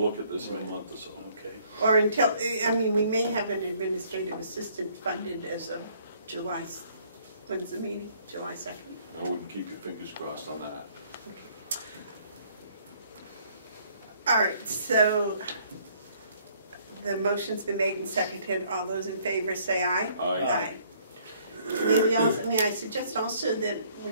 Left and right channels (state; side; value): inverted; both; correlation -0.62